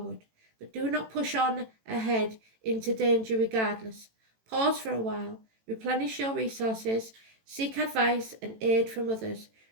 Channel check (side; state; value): left; late; 18 ms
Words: but do not push on ahead into danger regardless. Pause for a while, replenish your resources, seek advice and aid from others,